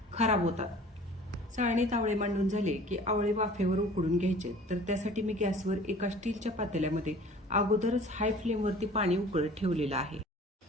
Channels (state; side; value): normal; both; correlation 0.47